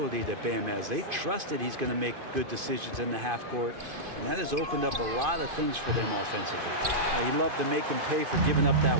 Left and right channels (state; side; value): late; left; 2.5 ms